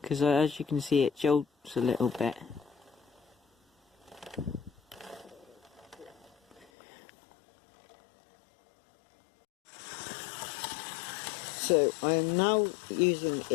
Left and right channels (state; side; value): drops out; right; at 6.7 s